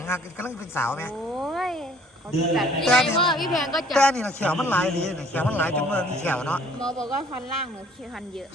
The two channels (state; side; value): normal; both; correlation 0.56